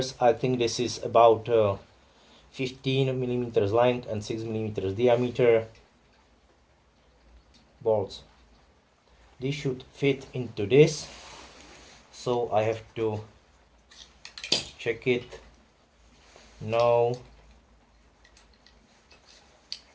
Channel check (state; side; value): identical; both; correlation 1.00